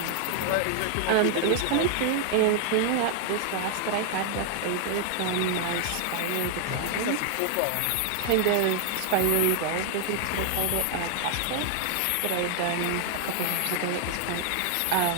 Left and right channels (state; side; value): different; both; correlation 0.00